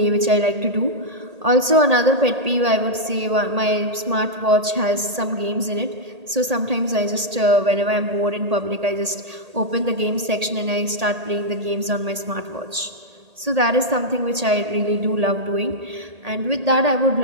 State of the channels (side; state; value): left; late; 1.8 ms